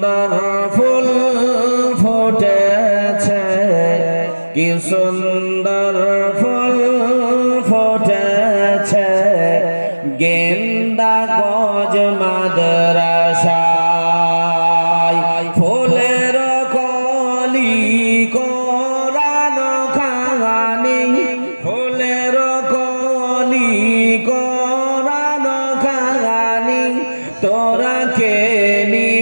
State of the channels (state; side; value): inverted; both; correlation -1.00